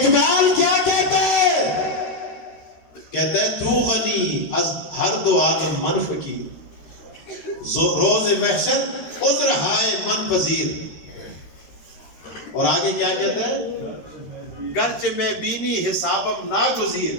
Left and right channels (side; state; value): right; late; 13 ms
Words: کیا کہتے ہیں؟ کہتا ہے تو غنی از ہر دو عالم من فقیر, روز محشر عذر ہائے من پذیر. اور آگے کیا کہتا ہے؟ گرچہ میں بینی حسابم ناگزیر,